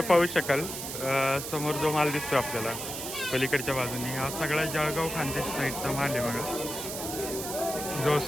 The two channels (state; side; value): noise; right; hiss, 6 dB below the sound